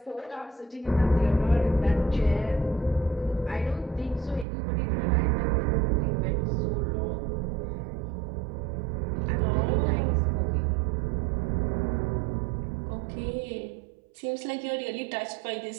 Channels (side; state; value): left; drops out; at 4.5 s